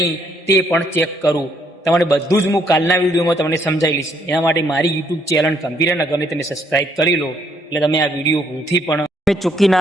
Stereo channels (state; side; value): normal; both; correlation 0.69